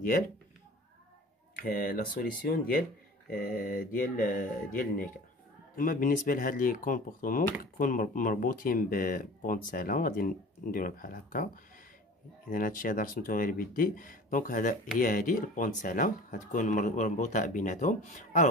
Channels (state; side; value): normal; both; correlation 0.42